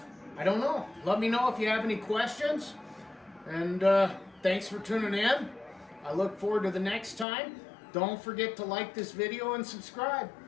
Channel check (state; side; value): drops out; right; at 7.2 s